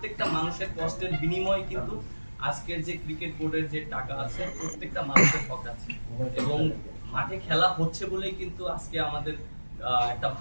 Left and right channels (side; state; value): both; inverted; correlation -1.00